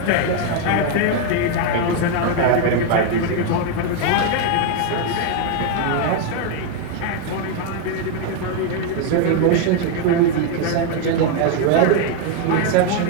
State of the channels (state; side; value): different; both; correlation 0.01